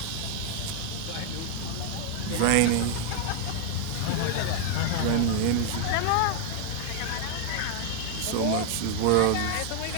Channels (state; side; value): different; both; correlation 0.00